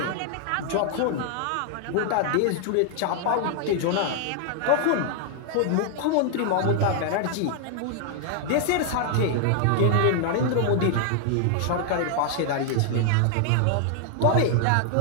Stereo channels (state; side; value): different; both; correlation 0.00